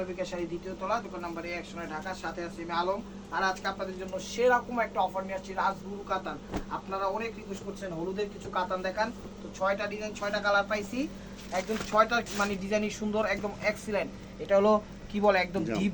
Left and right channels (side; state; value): both; identical; correlation 1.00